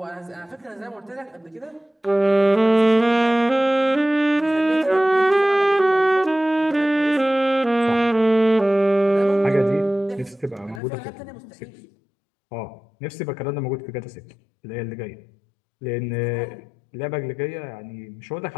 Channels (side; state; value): right; drops out; at 10.8 s